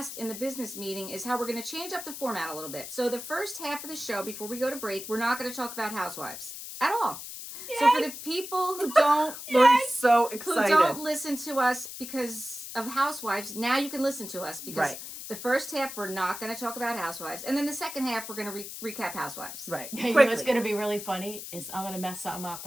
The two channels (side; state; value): left; noise; hiss, 10 dB below the sound